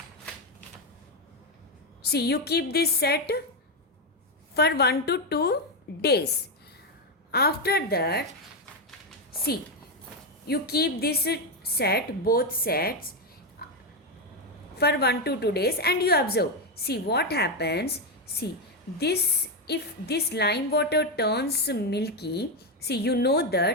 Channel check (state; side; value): normal; both; correlation 0.07